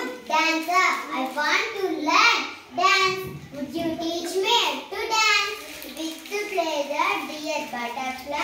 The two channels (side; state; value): both; identical; correlation 1.00